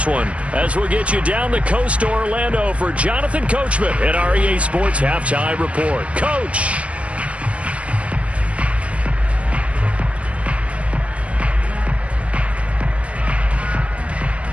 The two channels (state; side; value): late; left; 0.063 ms